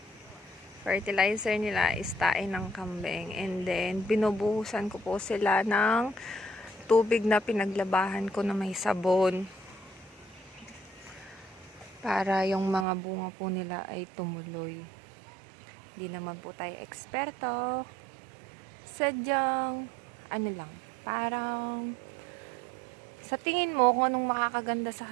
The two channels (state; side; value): drops out; left; at 12.9 s